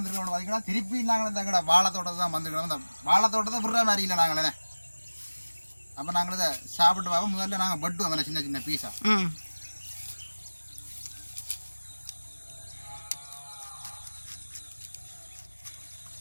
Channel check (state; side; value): inverted; both; correlation -1.00